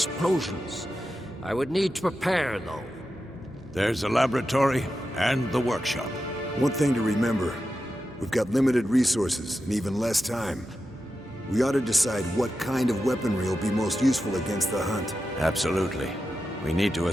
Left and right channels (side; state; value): both; normal; correlation 0.90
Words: I would need to prepare, though. There's the laboratory and the workshop. One thing to remember, we've got limited resources and even less time. We ought to decide what kind of weaponry will be most useful against the Hunt. Absolutely. We need to